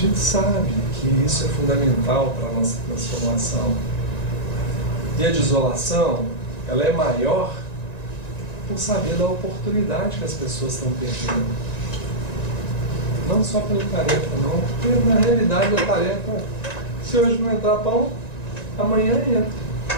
sabe que isso é fundamental para a nossa transformação. E a desolação, ela é maior por saber da oportunidade que as pessoas estão perdendo. Não só pela tarefa, não, porque na realidade a tarefa, se hoje não entrar pão, amanhã entra.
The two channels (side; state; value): right; late; 1.9 ms